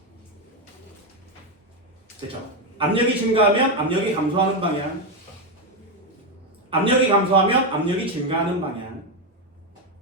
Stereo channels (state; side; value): normal; both; correlation 0.08